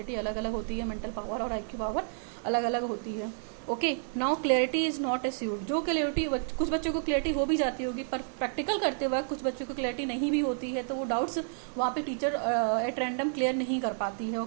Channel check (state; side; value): silent; left; digital silence